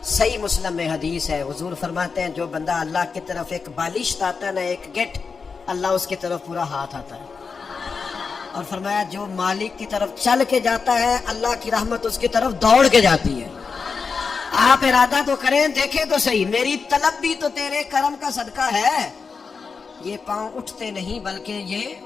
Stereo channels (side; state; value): right; quieter; 5.1 dB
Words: صحیح مسلم میں حدیث ہے، حضور فرماتے ہیں جو بندہ اللہ کی طرف ایک بالشت آتا ہے نا، ایک گٹ، اللہ اس کی طرف پورا ہاتھ آتا ہے. اور فرمایا جو مالک کی طرف چل کے جاتا ہے اللہ کی رحمت اس کی طرف دوڑ کے جاتی ہے. آپ ارادہ تو کریں, دیکھیں تو صحیح, میری طلب بھی تو تیرے کرم کا صدقہ ہے. یہ پاؤں اٹھتے نہیں بلکہ